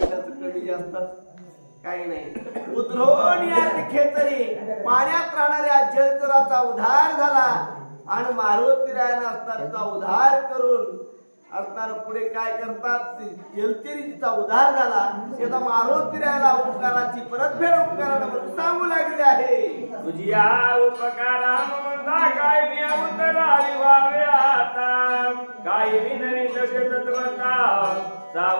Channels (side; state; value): both; inverted; correlation -1.00